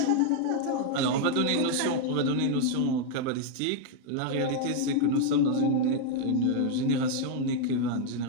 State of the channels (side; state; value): both; different; correlation 0.00